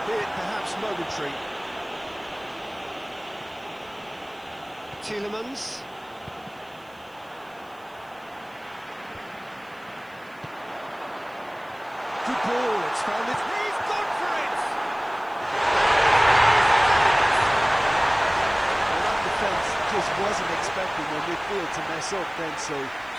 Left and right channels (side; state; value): right; noise; hiss, 30 dB below the sound